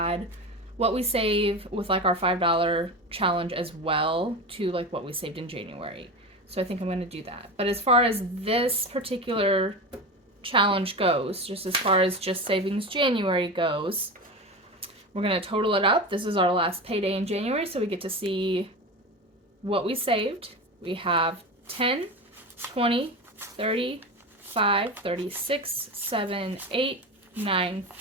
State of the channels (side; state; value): both; normal; correlation 0.25